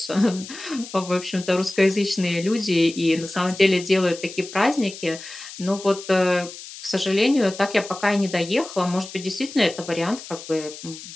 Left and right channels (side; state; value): left; noise; hiss, 14 dB below the sound